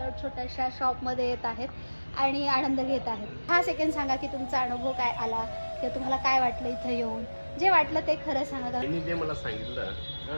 छोट्याशा शॉपमध्ये येत आहेत आणि आनंद घेत आहेत। हा सेकंड सांगा की तुमचा अनुभव काय आला किंवा तुम्हाला काय वाटलं इथं येऊन, जे वाटलं ते खरं सांगा। त्यांनी जे मला सांगितलं,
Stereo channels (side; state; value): both; inverted; correlation -1.00